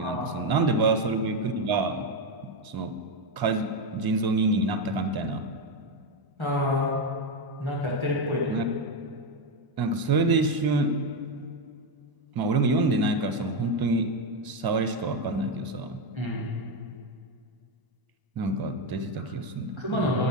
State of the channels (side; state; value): left; late; 1.0 ms